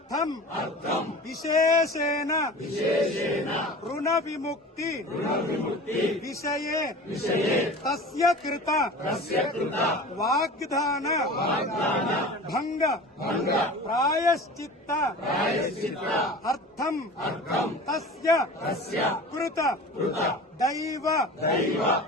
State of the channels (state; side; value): normal; both; correlation 0.37